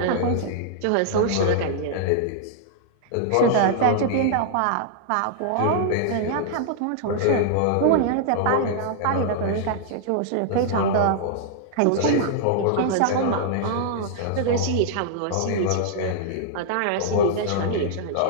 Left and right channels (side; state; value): both; different; correlation -0.01